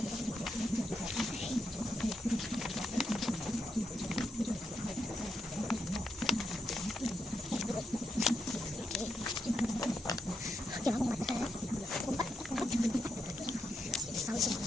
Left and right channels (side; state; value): both; normal; correlation 0.82